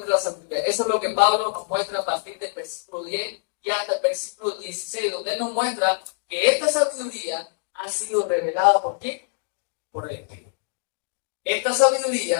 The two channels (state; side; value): silent; right; digital silence